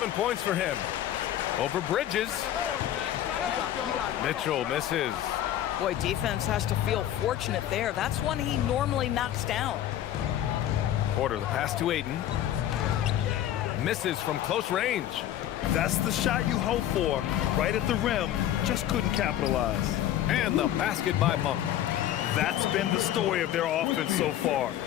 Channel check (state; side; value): quieter; right; 11.9 dB